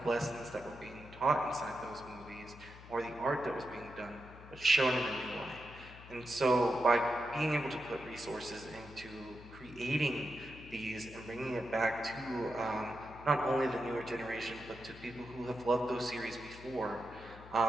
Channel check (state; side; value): noise; left; hum, 17 dB below the sound